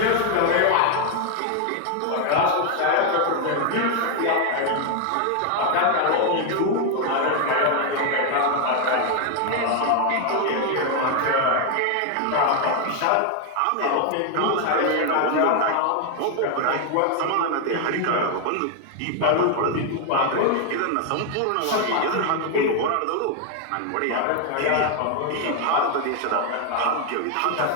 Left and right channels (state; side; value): different; both; correlation 0.01